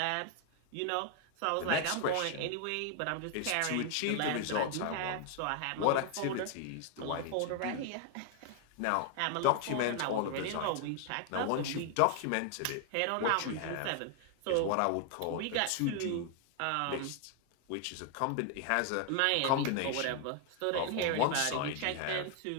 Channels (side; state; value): both; different; correlation 0.00